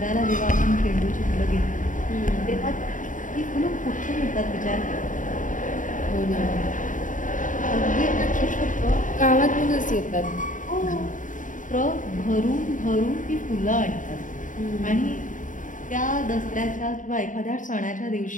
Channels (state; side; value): late; right; 0.38 ms